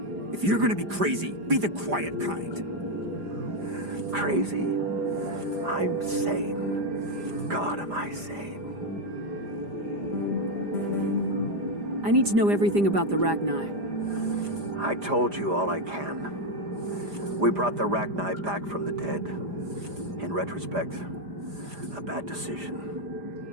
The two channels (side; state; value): left; late; 5.0 ms